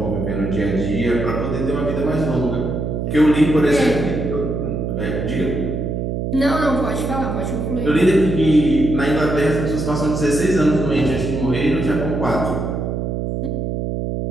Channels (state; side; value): noise; right; hum, 2 dB below the sound